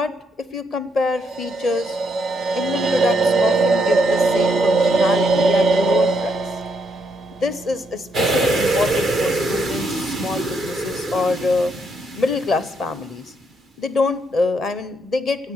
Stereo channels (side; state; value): both; normal; correlation 0.76